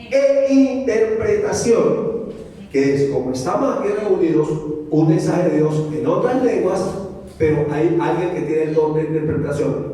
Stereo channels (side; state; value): both; identical; correlation 1.00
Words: e interpretación, que es como estamos aquí reunidos, un mensaje de Dios en otras lenguas, pero hay alguien que tiene el don de